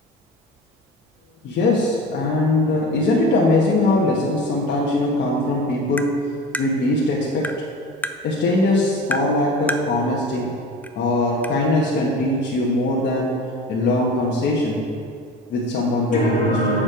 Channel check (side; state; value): both; normal; correlation 0.35